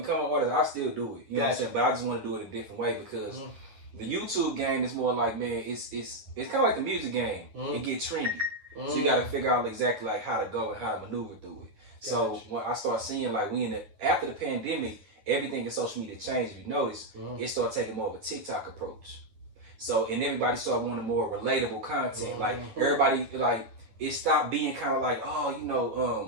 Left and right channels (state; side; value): late; left; 10 ms